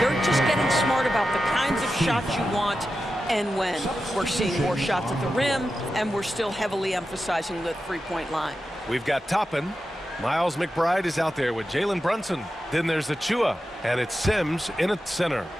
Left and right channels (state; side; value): normal; both; correlation 0.91